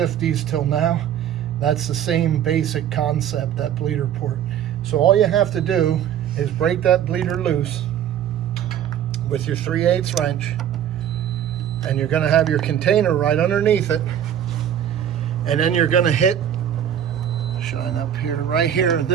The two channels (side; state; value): left; quieter; 9.9 dB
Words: till now, that's the same basic concept, that bleeder port. So all you have to do is break that bleeder loose with your 3/8 wrench, and you're going to have your container right underneath it, and then you're going to hit, shine up here, right here,